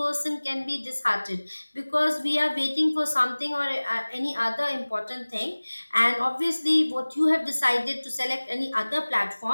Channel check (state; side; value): inverted; both; correlation -1.00